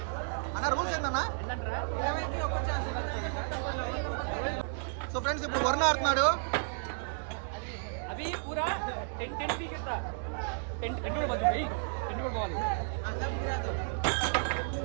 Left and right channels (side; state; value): left; silent; digital silence